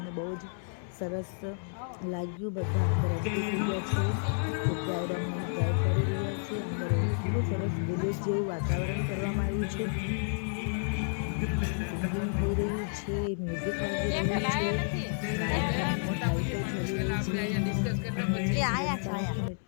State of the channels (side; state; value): right; silent; 57 dB below the other